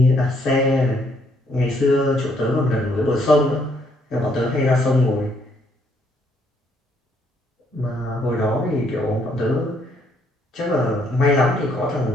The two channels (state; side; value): normal; both; correlation 0.69